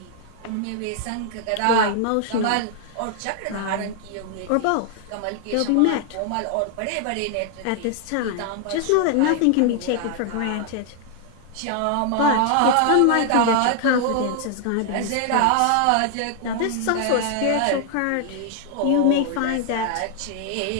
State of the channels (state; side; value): different; both; correlation 0.00